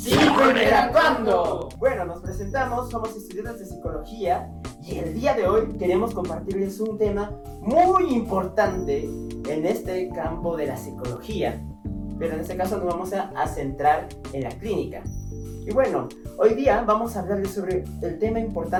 Bueno, nos presentamos, somos estudiantes de psicología y el día de hoy queremos compartirles un tema muy importante en este campo de la psicología, pero en este caso nos vamos a centrar en la clínica. Y bueno, hoy día vamos a hablarles sobre el tema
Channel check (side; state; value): both; identical; correlation 1.00